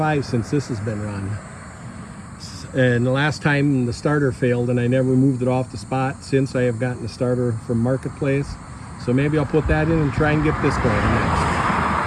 since this has been run. And the last time the starter failed and I never moved it off the spot since. I have gotten the starter from Marketplace. So maybe I'll put that in and try and get this going next.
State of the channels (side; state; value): both; identical; correlation 1.00